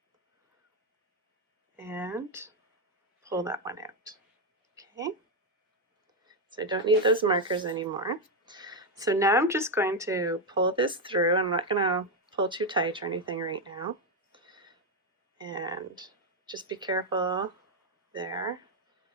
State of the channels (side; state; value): both; normal; correlation 0.05